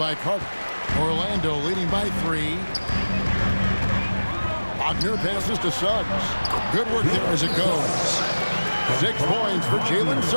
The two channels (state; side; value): inverted; both; correlation -1.00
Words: Carter. Orlando leading by 3. Wagner passes to Suggs. Good work there as it goes. 6 points for Jalen